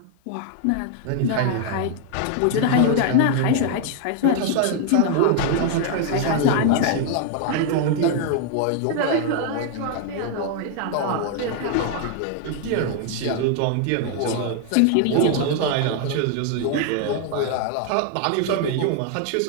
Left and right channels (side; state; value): both; different; correlation 0.00